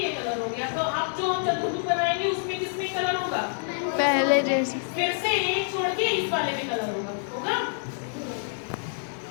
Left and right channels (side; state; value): right; silent; digital silence